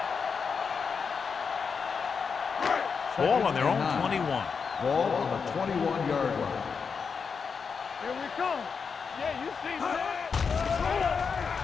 Ball on their own 21. Ball on the 21-yard line. Here we come. Yeah, you see that?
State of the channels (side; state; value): right; quieter; 5.7 dB